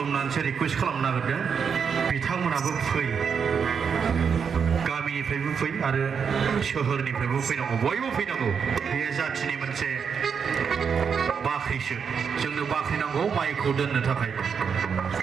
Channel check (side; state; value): left; quieter; 6.5 dB